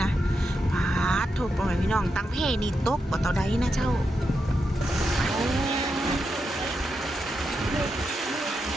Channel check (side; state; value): both; normal; correlation 0.85